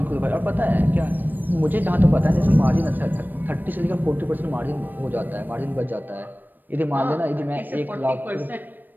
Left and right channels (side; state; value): left; late; 0.091 ms